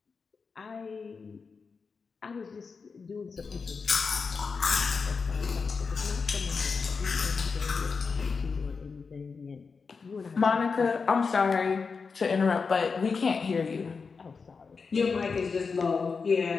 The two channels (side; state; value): right; quieter; 5.0 dB